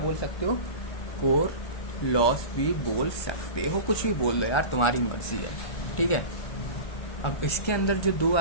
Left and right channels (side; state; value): right; late; 1.3 ms